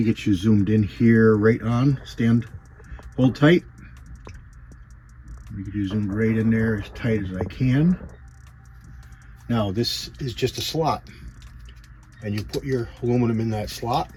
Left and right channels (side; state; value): both; identical; correlation 1.00